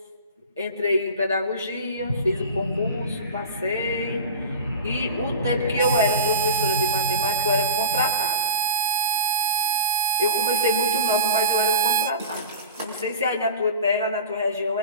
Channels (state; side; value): inverted; both; correlation -0.34